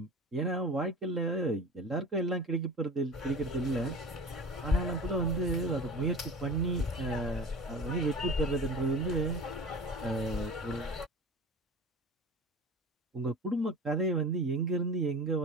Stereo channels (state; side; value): normal; both; correlation 0.36